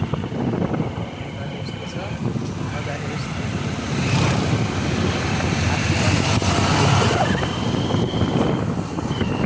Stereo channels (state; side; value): identical; both; correlation 1.00